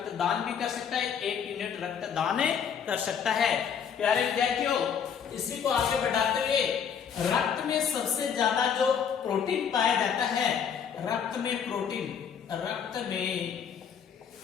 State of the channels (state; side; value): quieter; right; 7.5 dB